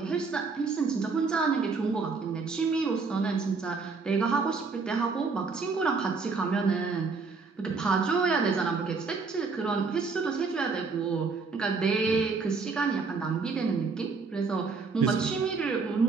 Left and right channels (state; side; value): quieter; left; 4.5 dB